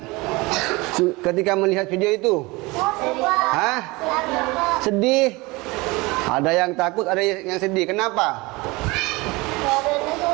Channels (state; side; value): quieter; left; 23.6 dB